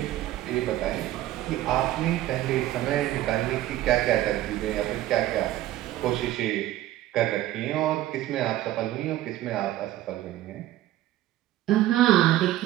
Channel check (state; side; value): quieter; left; 14.5 dB